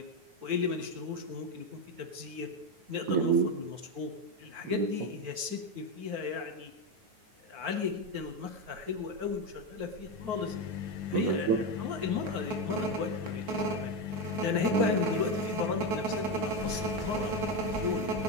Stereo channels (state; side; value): late; left; 9.4 ms